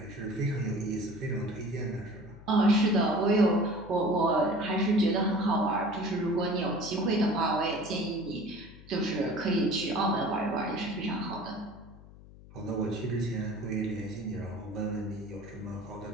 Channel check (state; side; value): noise; left; hum, 20 dB below the sound